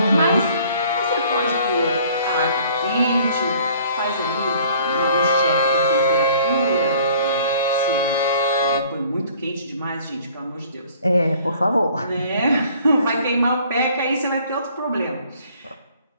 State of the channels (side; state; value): both; inverted; correlation -0.55